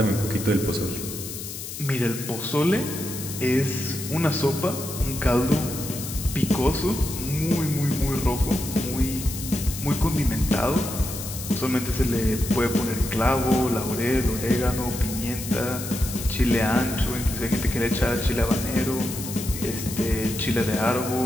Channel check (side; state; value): left; noise; hiss, 9 dB below the sound